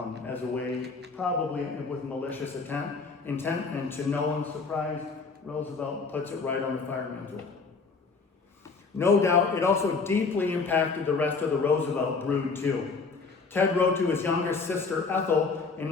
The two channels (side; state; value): right; quieter; 4.5 dB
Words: as a way, probably with malicious intent, and to no one's surprise, Roosevelt puts it right on the fire mantle. No doubt, it also deeply impacted the rest of the Roosevelt brood, too. Ted wrote to his younger sister, Ethel, in